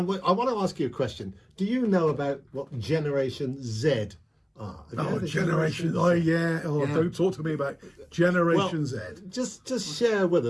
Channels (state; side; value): identical; both; correlation 1.00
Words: I want to ask you a question. Do you know about what Generation Z are? Generation. Oh, yeah. Oh, yeah. Don't talk to me about Generation Z. Just share with